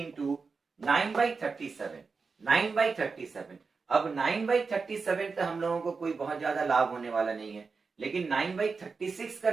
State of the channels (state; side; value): quieter; left; 4.7 dB